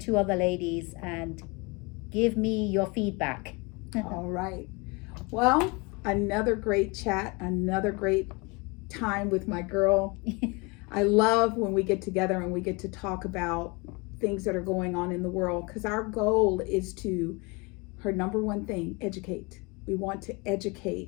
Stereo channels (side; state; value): right; quieter; 28.2 dB